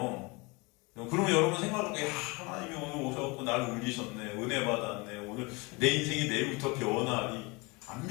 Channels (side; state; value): right; quieter; 26.3 dB